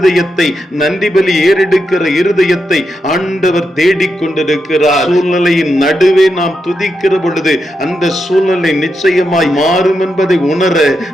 நன்றி பலி ஏறெடுக்கிற இருதயத்தை ஆண்டவர் தேடிக்கொண்டிருக்கிறார். சூழ்நிலையின் நடுவே நாம் துதிக்கிற பொழுது அந்த சூழ்நிலை நிச்சயமாய் மாறும் என்பதை உணர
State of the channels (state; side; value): normal; both; correlation 0.85